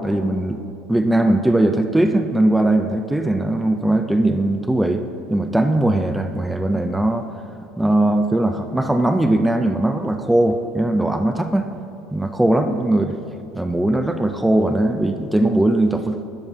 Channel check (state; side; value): normal; both; correlation 0.90